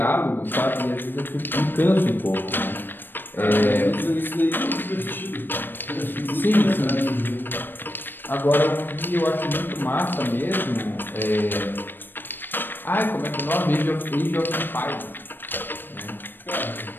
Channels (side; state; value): right; late; 0.095 ms